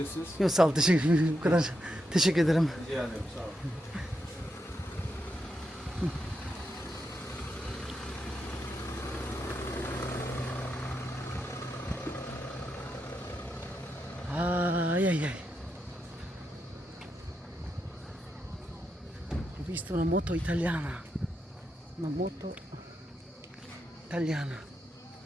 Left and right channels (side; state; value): both; normal; correlation 0.84